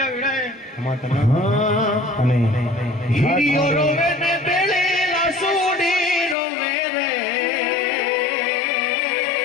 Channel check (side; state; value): right; drops out; at 6.4 s